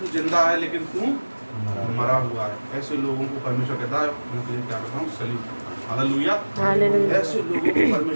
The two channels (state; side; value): inverted; both; correlation -1.00